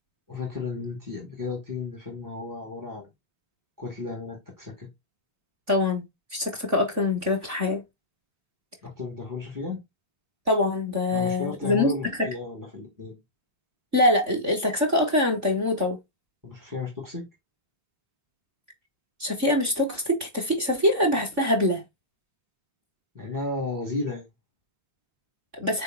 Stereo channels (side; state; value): left; late; 3.5 ms